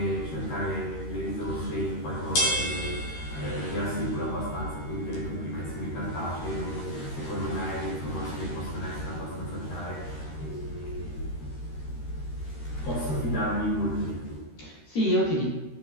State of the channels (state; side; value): late; right; 13 ms